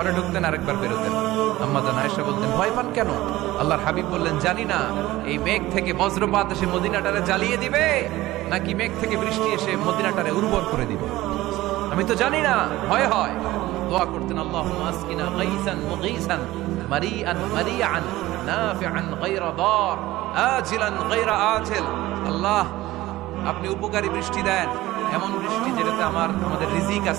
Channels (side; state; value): left; quieter; 17.2 dB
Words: ঢুকতেন আর একবার বেরোতেন। আম্মা জান আয়েশা বলতেন, ভয় পান কেন? আল্লাহর হাবিব বললেন, জানি না এই মেঘ থেকে বজ্রপাত এসে মদিনাটারে জ্বালিয়ে দিবে নাকি মেঘ থেকে বৃষ্টি এসে মদিনাটারে উর্বর করে দিবে, আমি তো জানি না, ভয় হয়। দোয়া করতেন, আল্লাহুম্মা আসকিনা গাইসান মুগীসান মারিআন মারিআন নাফিআন গায়রা দার আজিলান গায়রা আজিল। আল্লাহ, আপনি উপকারী বৃষ্টি দেন, এমন বৃষ্টি যেটাতে আমাদের রিজিক